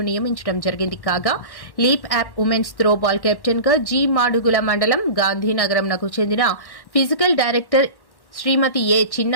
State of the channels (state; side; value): late; right; 1.1 ms